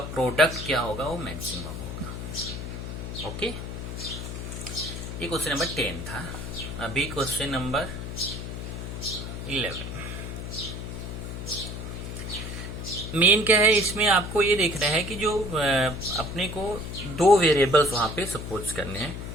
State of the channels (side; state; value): left; noise; hum, 7 dB below the sound